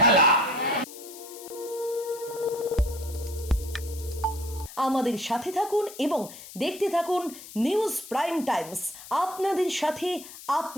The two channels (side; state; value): left; noise; hiss, 15 dB below the sound